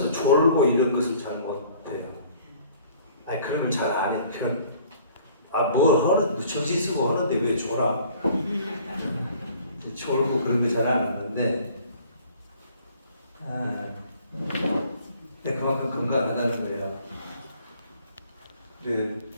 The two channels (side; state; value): both; inverted; correlation -0.54